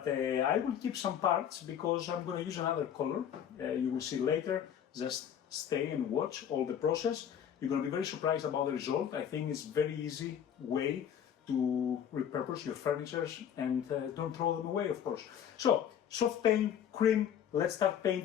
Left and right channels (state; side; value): quieter; right; 9.1 dB